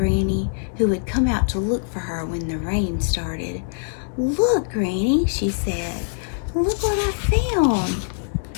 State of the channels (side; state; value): right; silent; digital silence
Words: who had come out to look for her when the rain started. "Look, Granny," she said. "Look what I found."